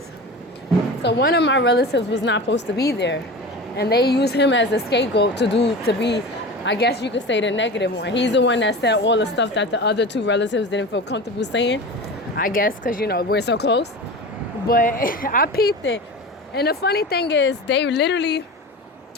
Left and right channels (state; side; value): normal; both; correlation 0.31